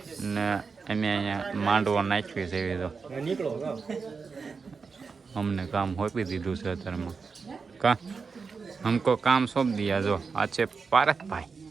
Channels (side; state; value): left; quieter; 5.0 dB